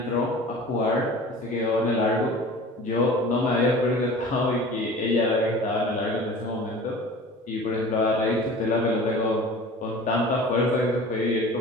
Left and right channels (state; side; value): normal; both; correlation 0.40